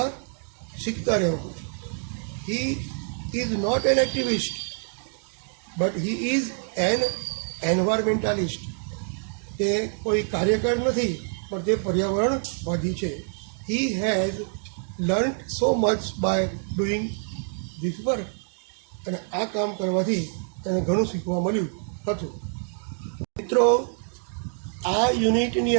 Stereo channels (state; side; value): silent; left; 61 dB below the other